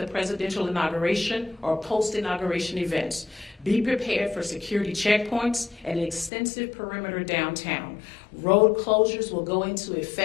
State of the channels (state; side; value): drops out; right; at 6.3 s